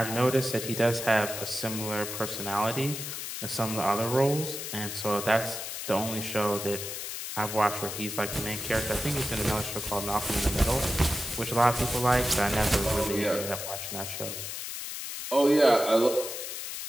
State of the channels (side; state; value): left; noise; hiss, 6 dB below the sound